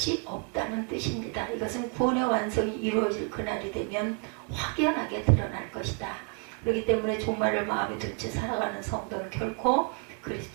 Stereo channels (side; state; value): left; quieter; 35.1 dB